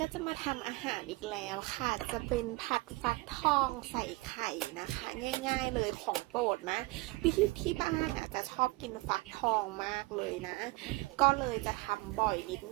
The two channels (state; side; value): quieter; left; 22.8 dB